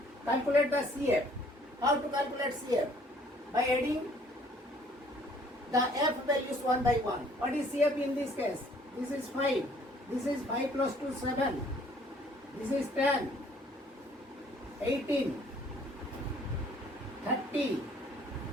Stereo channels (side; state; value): both; normal; correlation 0.59